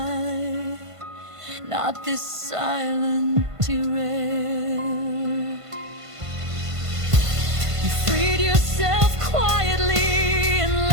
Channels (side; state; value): left; late; 1.5 ms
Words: not this silent derail. You freed yourself quietly and